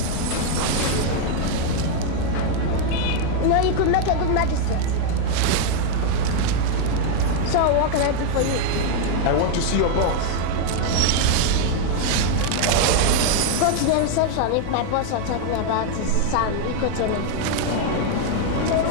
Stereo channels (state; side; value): different; both; correlation 0.00